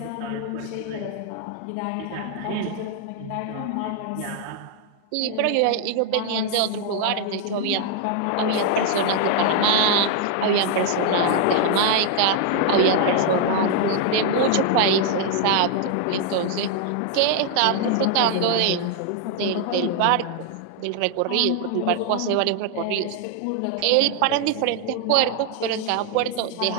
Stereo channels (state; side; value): different; both; correlation 0.00